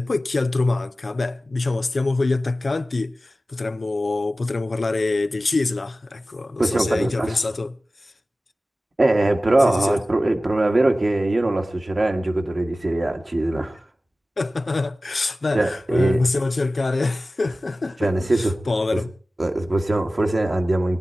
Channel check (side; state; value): both; normal; correlation 0.96